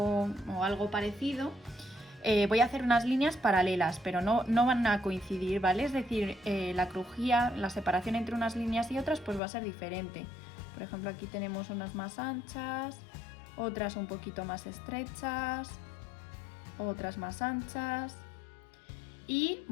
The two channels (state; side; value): drops out; right; at 9.4 s